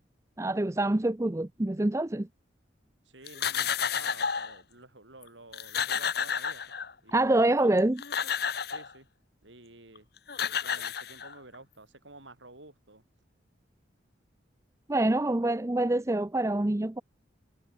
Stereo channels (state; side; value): normal; both; correlation 0.62